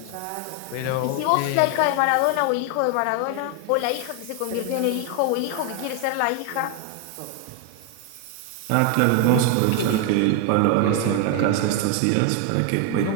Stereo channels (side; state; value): both; different; correlation 0.01